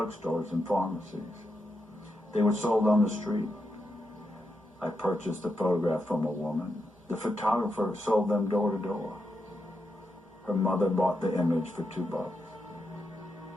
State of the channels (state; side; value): normal; both; correlation 0.84